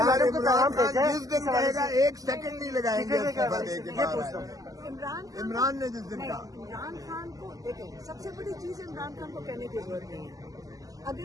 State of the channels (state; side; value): late; left; 0.17 ms